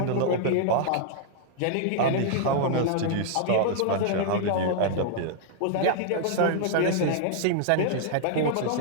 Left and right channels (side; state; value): both; different; correlation -0.01